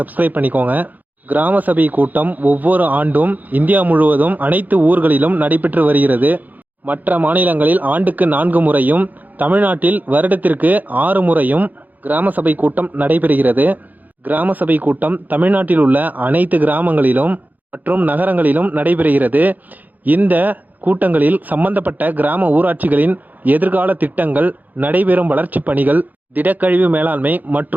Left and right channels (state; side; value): late; left; 0.082 ms